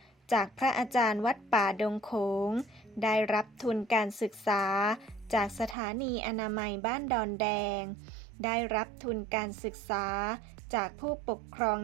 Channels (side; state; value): left; drops out; at 5.8 s